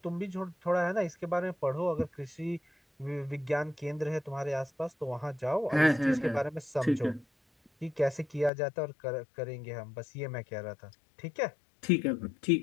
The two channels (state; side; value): drops out; right; at 8.5 s